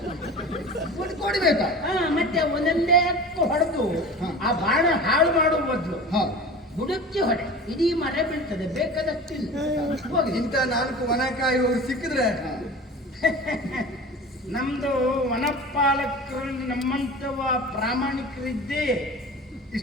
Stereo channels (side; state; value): both; normal; correlation 0.36